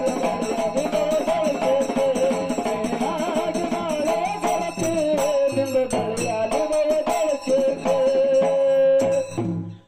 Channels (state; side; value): identical; both; correlation 1.00